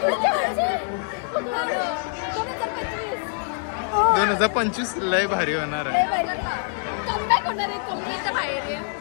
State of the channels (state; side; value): silent; right; 62 dB below the other